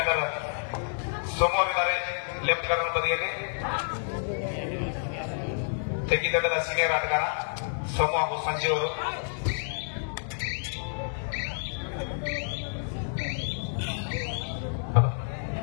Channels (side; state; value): right; silent; digital silence